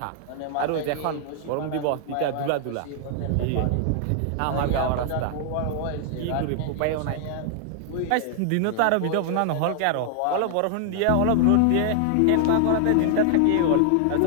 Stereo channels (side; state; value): both; different; correlation 0.00